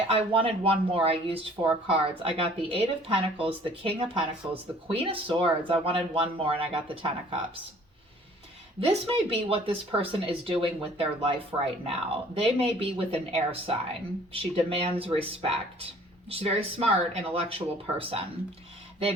wanted one more. I used 4 cards. I got the 8 of Pentacles, the King of Pentacles, the Queen of Swords. I wanted one more, and I got the 10 of Cups. This may be what this person is doing with their life right now. They may be with an air sign. She demands respect. She's a very smart, intellectual person. They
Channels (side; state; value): both; normal; correlation 0.54